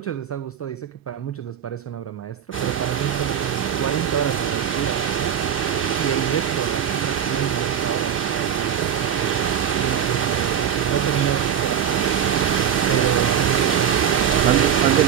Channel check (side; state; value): left; quieter; 8.8 dB